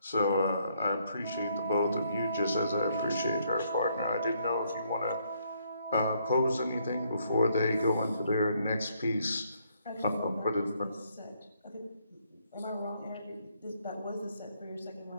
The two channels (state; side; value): inverted; both; correlation -0.71